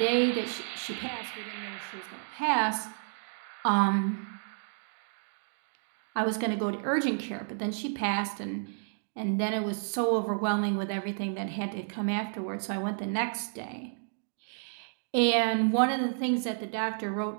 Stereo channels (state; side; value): silent; left; digital silence